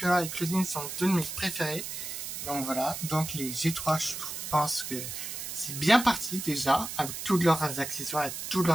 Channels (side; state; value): right; noise; hiss, 6 dB below the sound